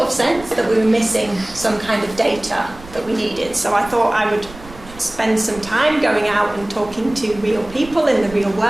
of sense that we were missing some kind of data that we needed. So I thought I would spend some time going out and talking to real people in the real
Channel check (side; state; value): right; noise; rumble, 18 dB below the sound